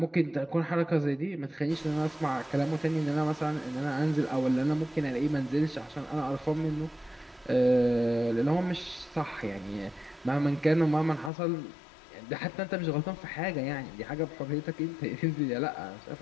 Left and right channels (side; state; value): right; drops out; at 11.3 s